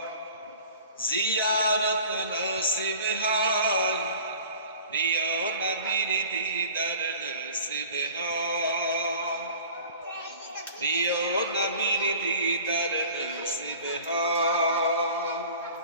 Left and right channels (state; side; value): inverted; both; correlation -0.44